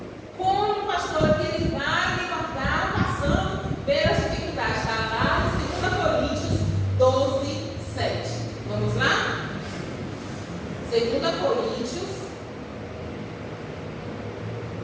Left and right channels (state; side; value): identical; both; correlation 1.00